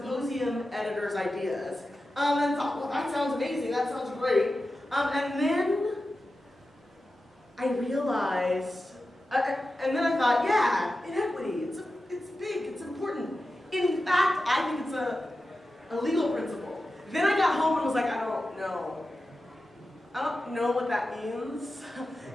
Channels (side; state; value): both; normal; correlation 0.92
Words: editor's ideas and thought, well, that sounds amazing, that sounds great. And then I realized, and then I thought, yeah, inequity, it's big, it's important. In fact, I think it's a legal principle. Then I got home and was like, I don't know what that means.